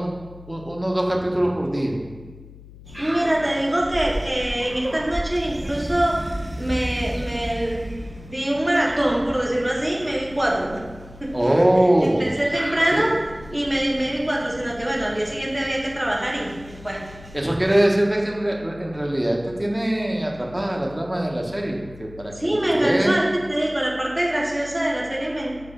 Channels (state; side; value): noise; left; hum, 19 dB below the sound